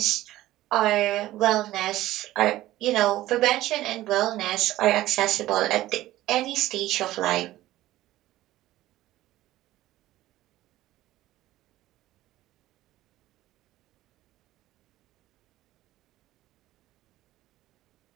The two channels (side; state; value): left; quieter; 15.5 dB